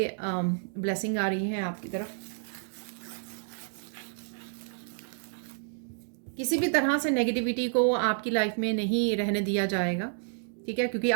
ब्लेसिंग आ रही है आपकी तरफ। किसी भी तरह से नेगेटिविटी को आपकी लाइफ में नहीं रहने दिया जाएगा, ठीक है, क्योंकि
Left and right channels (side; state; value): left; silent; digital silence